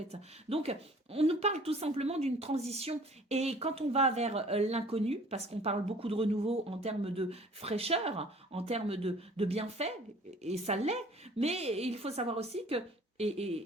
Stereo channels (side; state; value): both; normal; correlation 0.51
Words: Donc, on nous parle tout simplement d'une transition et quand on va vers l'inconnu, parce qu'on parle beaucoup de renouveau en termes de fraîcheur, en termes de bienfaits, et ça l'est, mais il faut savoir aussi que